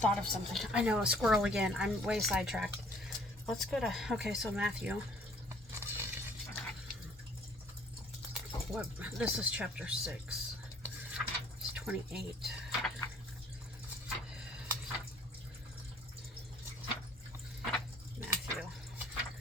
of something. I know, a squirrel again. I'm way sidetracked. Let's go to, okay, so Matthew. What, this is chapter 6. It's 28. Matthew.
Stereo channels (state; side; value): normal; both; correlation 0.57